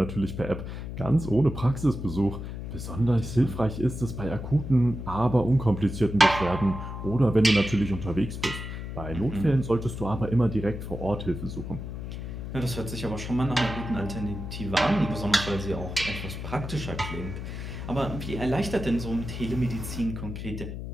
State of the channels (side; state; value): left; noise; hum, 7 dB below the sound